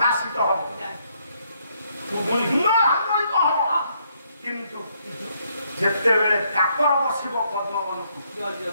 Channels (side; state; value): both; inverted; correlation -0.72